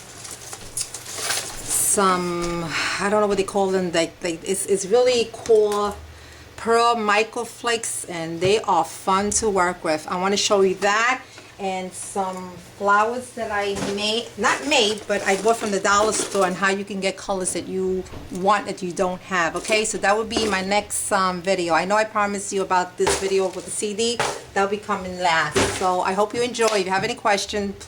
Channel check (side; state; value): both; identical; correlation 1.00